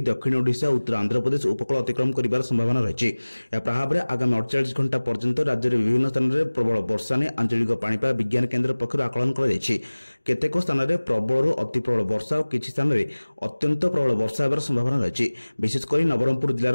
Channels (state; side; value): inverted; both; correlation -1.00